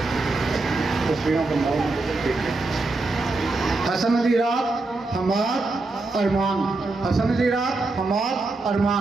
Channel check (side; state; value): left; quieter; 3.3 dB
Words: हसन अली रात, हमाद, अरमान। हसन अली रात, हमाद,